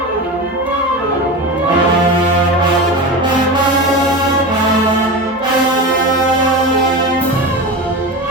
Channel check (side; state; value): both; normal; correlation 0.25